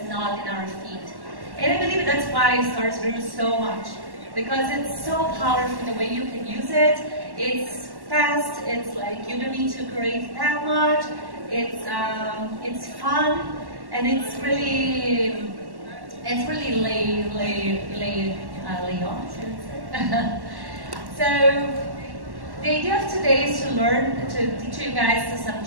not in our feed. And I believe that's why stories grew so much, because it's so powerful the way you can use it. It's fast, it's like you don't need to create that much, it's fun, and it's really lay on. So the idea of today is to teach you guys some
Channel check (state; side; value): late; left; 1.1 ms